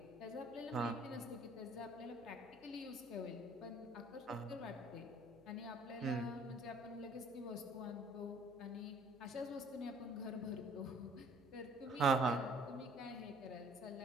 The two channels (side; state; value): right; noise; hum, 28 dB below the sound